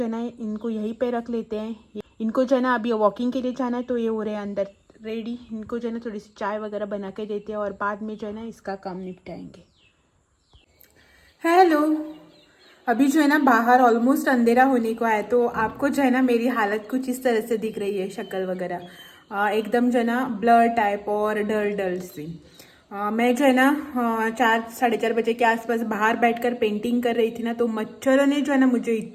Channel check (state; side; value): identical; both; correlation 1.00